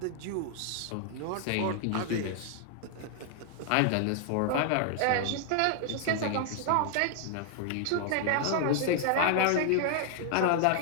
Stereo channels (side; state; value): both; different; correlation 0.00